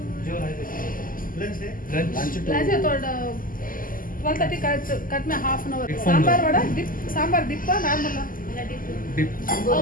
लंच है. लंच है तो 12:30 कट में half an hour. Sambar vada dip, sambar dip normal dip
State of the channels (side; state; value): right; late; 0.41 ms